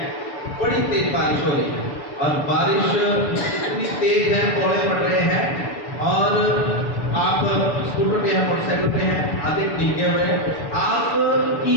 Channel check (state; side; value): late; right; 6.9 ms